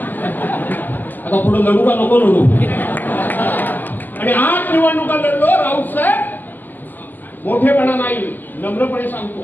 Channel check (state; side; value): late; right; 0.086 ms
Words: आता पुढे लढू का नको लढू? आणि 8 निवडणुका लढलो. राऊत साहेब मोठेपणा नाही, नम्रपणे